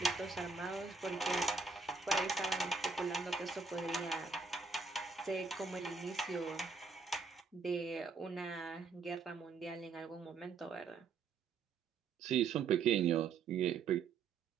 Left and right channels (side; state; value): left; quieter; 4.7 dB